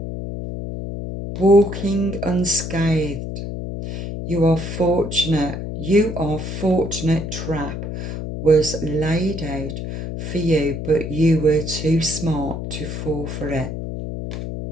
Walking unscathed. You are fortunate. Trap was laid out for you, but you were too smart to fall for it.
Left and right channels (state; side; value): noise; left; hum, 6 dB below the sound